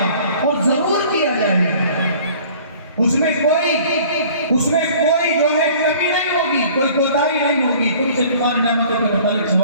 وہ ضرور کیا جائے گا، اس میں کوئی جو ہے کمی نہیں ہوگی، کوئی کوتاہی نہیں ہوگی۔ تم سے تمہاری نعمتوں کے متعلق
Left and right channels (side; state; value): both; inverted; correlation -0.50